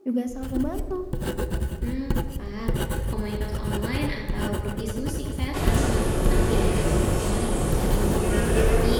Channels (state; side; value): identical; both; correlation 1.00